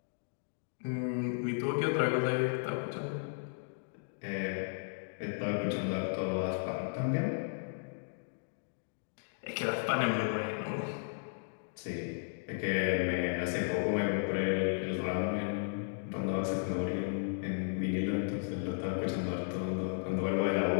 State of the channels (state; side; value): silent; right; digital silence